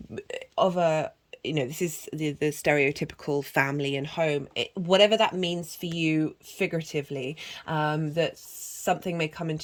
this is the stereotypical family and home, whatever that means for you figuratively, that something may come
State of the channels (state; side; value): identical; both; correlation 1.00